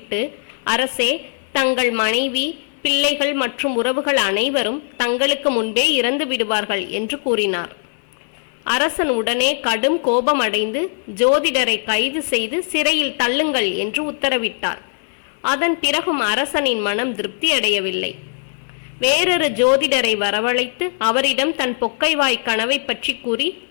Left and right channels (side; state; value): right; silent; 66 dB below the other